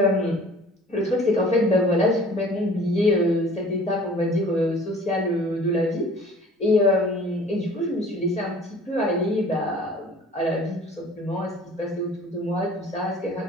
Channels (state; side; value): normal; both; correlation 0.48